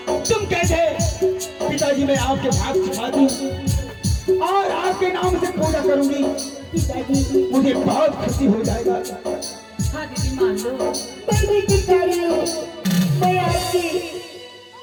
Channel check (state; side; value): identical; both; correlation 1.00